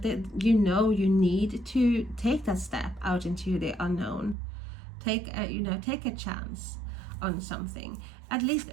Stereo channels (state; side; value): drops out; left; at 4.4 s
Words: that you need to take that step out into the unknown. Take a chance on something. At least